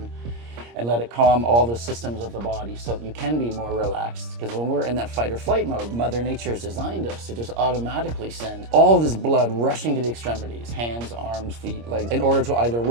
and let it calm all the systems of the body so you can be more relaxed. Because when we're in that fight or flight mode, Mother Nature has designed us to just automatically send all this blood rushing to the extremities, hands, arms, feet, legs, in order to either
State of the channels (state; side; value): late; left; 26 ms